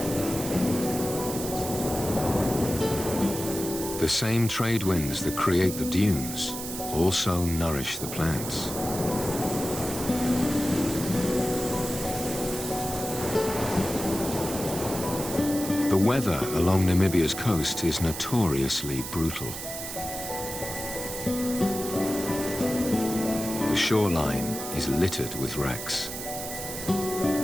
The same trade winds that create the dunes also nourish the plants. The weather along Namibia's coast is notoriously brutal. The shoreline is littered with wrecks.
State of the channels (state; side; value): noise; right; hiss, 7 dB below the sound